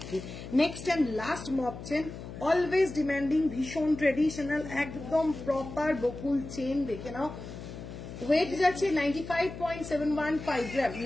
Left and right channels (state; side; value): noise; left; hum, 11 dB below the sound